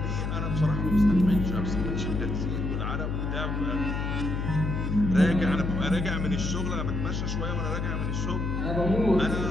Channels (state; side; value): noise; left; hum, 2 dB below the sound